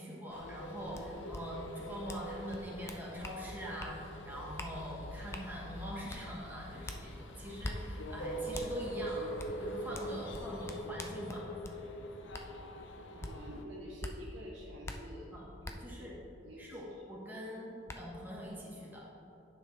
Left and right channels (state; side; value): normal; both; correlation 0.49